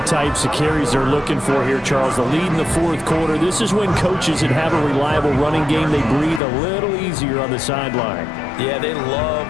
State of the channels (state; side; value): drops out; right; at 6.4 s